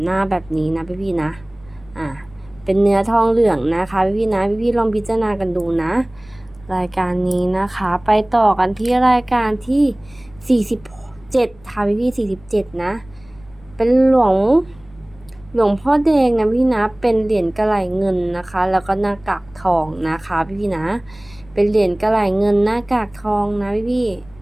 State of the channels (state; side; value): noise; left; rumble, 25 dB below the sound